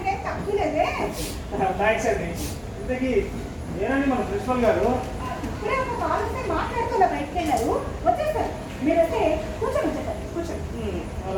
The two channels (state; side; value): identical; both; correlation 1.00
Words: తక్కువ లేదే. థ్యాంక్స్ అండి. ఇంతకీ నేనండి మన ప్రిన్సిపల్ గారు. ఇప్పుడే ఒక కాల్ వస్తే మాట్లాడుతూ బయటకు వెళ్ళారు, వచ్చేసారు. మీరు వస్తే కూర్చొని వచ్చేసారు, కూర్చోండి.